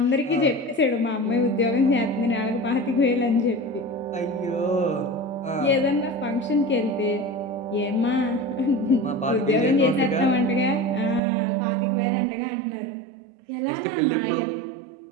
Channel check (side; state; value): left; drops out; at 11.2 s